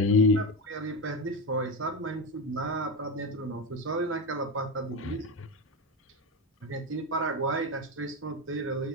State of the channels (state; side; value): normal; both; correlation 0.17